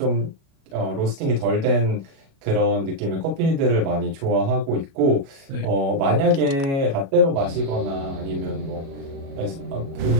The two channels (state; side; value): late; left; 36 ms